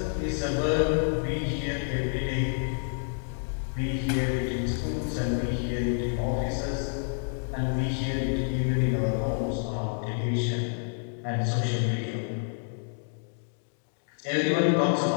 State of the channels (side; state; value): right; silent; digital silence